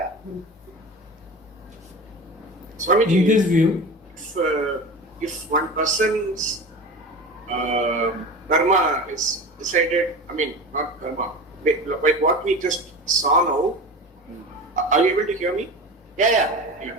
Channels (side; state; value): both; normal; correlation 0.31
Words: Swamiji, in this view, if one person's karma is decided, not karma, like what we just saw now, are you able to hear me?